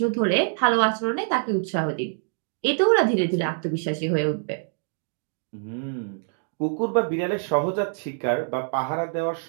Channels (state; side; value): silent; left; digital silence